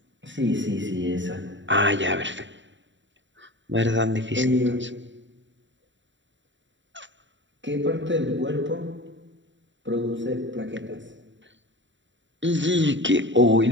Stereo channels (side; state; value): left; late; 0.54 ms